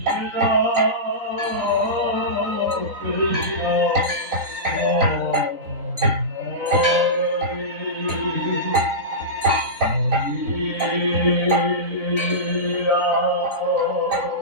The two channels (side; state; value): left; late; 3.9 ms